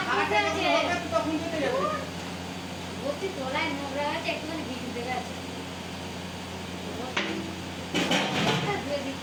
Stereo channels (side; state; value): both; identical; correlation 1.00